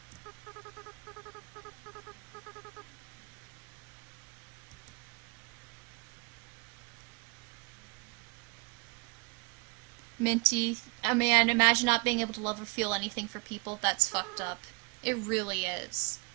Minty, man, imagine not being able to love or feel anything for people. That's fucked up. It really is.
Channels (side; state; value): left; quieter; 31.0 dB